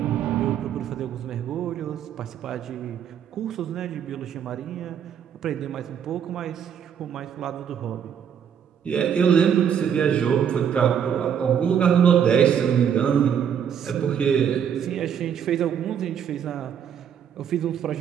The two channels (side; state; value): left; quieter; 8.3 dB